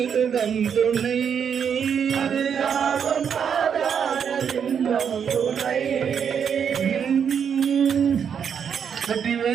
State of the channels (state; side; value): quieter; left; 7.5 dB